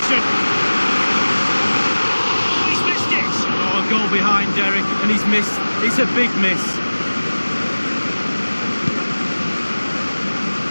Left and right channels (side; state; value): both; inverted; correlation -1.00